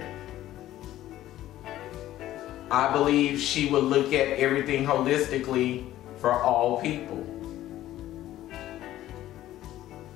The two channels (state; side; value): quieter; right; 13.9 dB